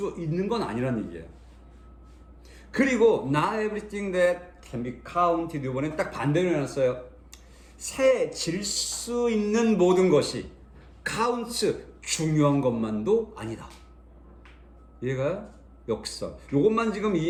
있는 건 아니란 얘기예요. 그리고 not everything that can be counted, 이번엔 딱 반대로 해놨어요. 세질 수 있는 모든 것이 counts, 중요한 것만도 아니다. 이해가요? 역설. 요것만 지금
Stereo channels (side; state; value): both; identical; correlation 1.00